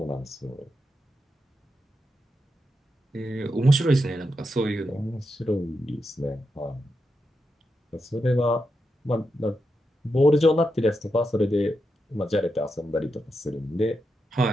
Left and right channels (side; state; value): both; normal; correlation 0.86